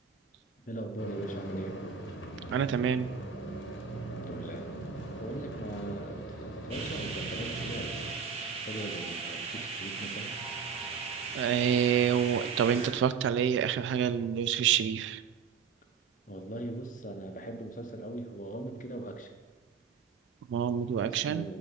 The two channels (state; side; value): quieter; left; 6.6 dB